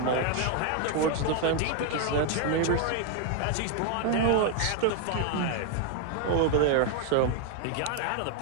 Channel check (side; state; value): both; different; correlation 0.01